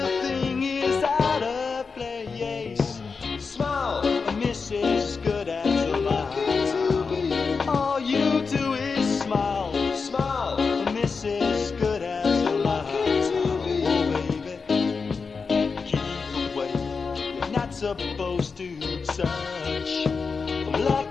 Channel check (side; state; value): right; quieter; 4.9 dB